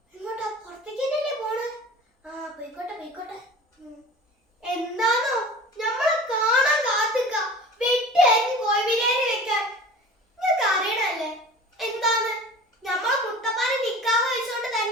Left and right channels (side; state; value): both; normal; correlation 0.40